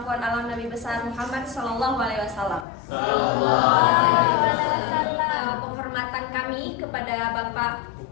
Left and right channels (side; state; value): right; drops out; at 2.7 s